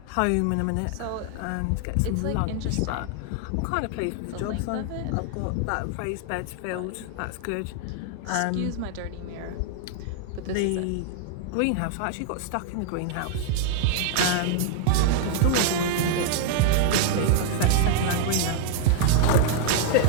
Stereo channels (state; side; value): different; both; correlation 0.00